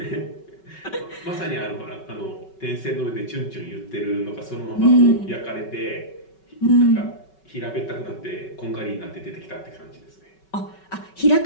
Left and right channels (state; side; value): late; right; 5.3 ms